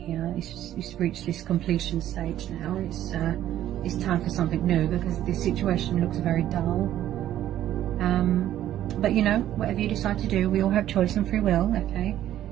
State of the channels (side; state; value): left; quieter; 12.3 dB